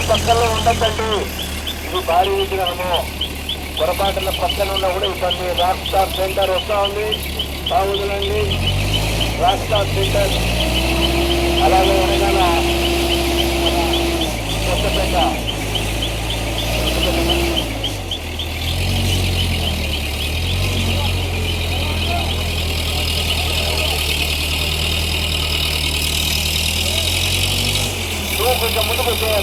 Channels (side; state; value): both; identical; correlation 1.00